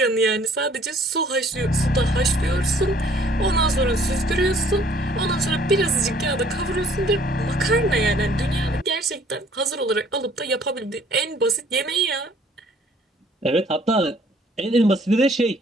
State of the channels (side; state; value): both; normal; correlation 0.58